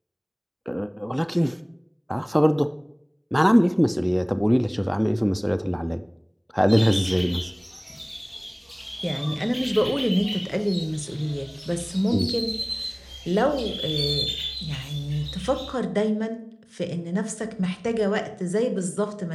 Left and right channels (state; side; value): identical; both; correlation 1.00